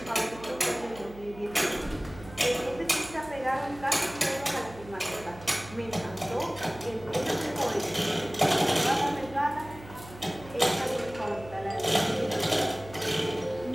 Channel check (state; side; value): noise; right; hum, 17 dB below the sound